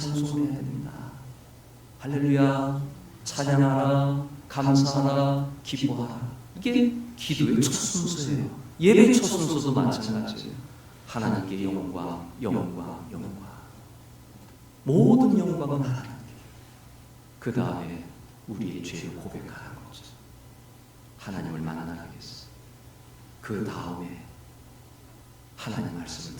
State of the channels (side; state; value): both; identical; correlation 1.00